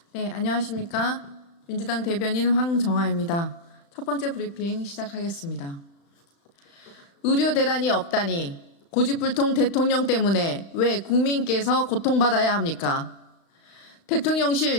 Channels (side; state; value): right; late; 35 ms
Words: 네, 안녕하십니까. 민주당 대변인 황정아입니다. 첫 번째 브리핑 시작하겠습니다. 의료 대란이 없다니 고집불통 대통령 때문에 왜 국민께서 고통받아야 합니까?